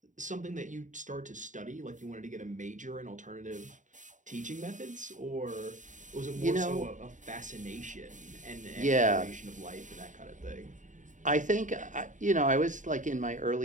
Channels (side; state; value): left; late; 0.36 ms